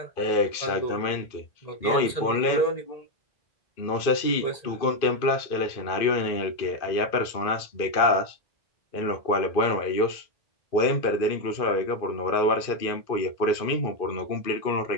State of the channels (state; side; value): late; right; 2.5 ms